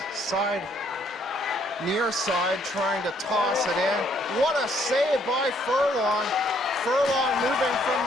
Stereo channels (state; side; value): normal; both; correlation 0.67